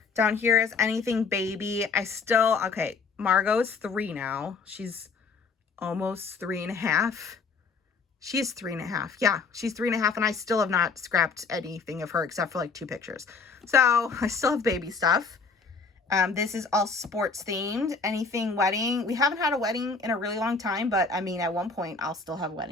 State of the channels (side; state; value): right; quieter; 4.7 dB